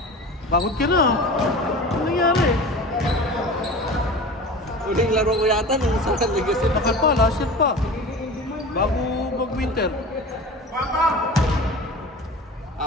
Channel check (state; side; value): normal; both; correlation 0.35